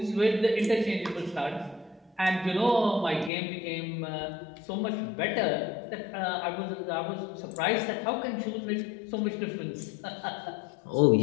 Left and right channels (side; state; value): right; drops out; at 3.3 s